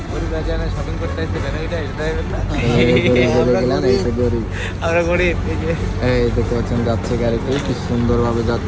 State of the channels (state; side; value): identical; both; correlation 1.00